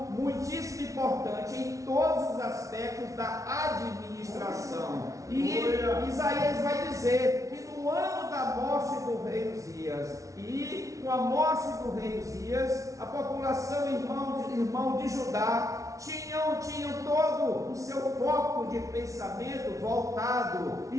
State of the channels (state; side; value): late; left; 0.16 ms